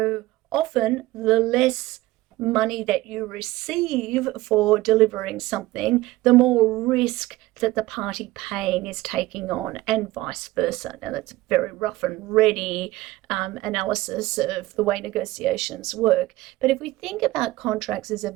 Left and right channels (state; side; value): quieter; left; 18.0 dB